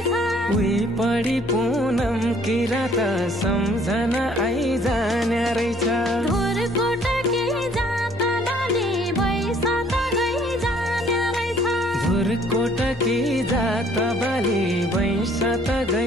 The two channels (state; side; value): normal; both; correlation 0.59